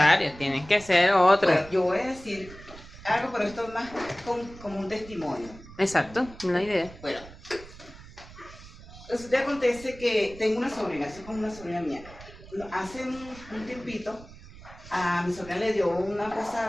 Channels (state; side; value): noise; right; rumble, 18 dB below the sound